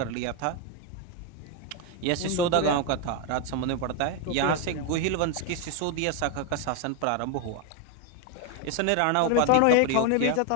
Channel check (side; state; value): both; different; correlation 0.01